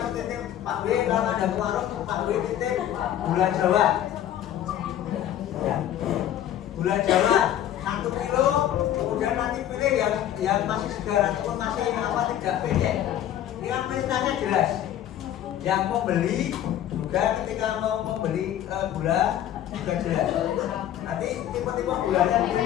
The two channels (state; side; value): quieter; right; 11.3 dB